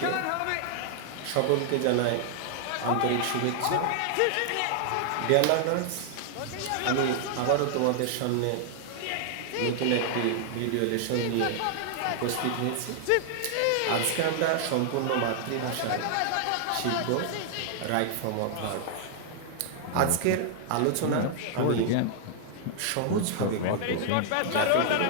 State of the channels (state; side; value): different; both; correlation -0.01